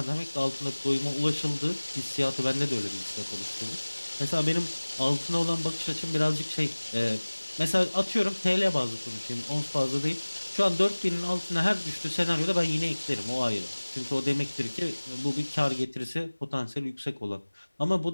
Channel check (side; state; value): both; inverted; correlation -1.00